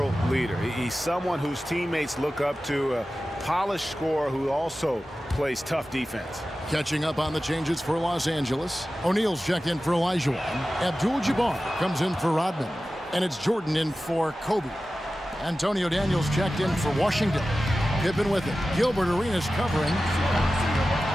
leader. He's someone whose teammates look up to, a polished scorer who also plays tough defense. Catching up on the changes for Los Angeles. O'Neal's checked in for Olajuwon. Abdul-Jabbar comes in for Rodman. And it's Jordan in for Kobe. Antonio Daniels checked in for Washington. Pippen with it. Gilbert Arenas covering.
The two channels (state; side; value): normal; both; correlation 0.95